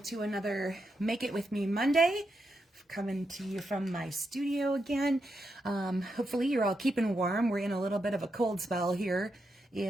to another Make It With Me Monday. Coming to you from my studio again. Hopefully you're all keeping warm. We're in a little bit of a cold spell here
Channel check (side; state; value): both; normal; correlation 0.84